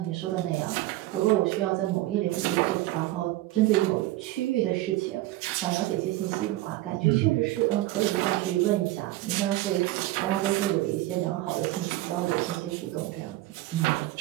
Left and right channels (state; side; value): quieter; left; 16.8 dB